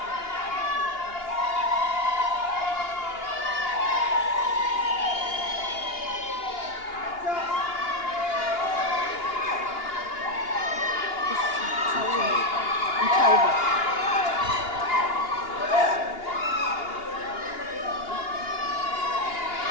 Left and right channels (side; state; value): right; late; 2.8 ms